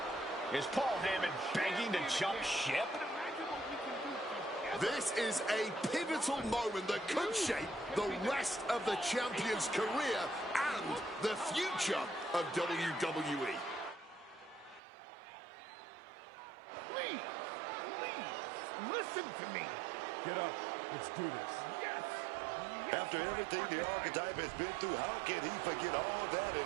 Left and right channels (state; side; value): drops out; left; at 14.8 s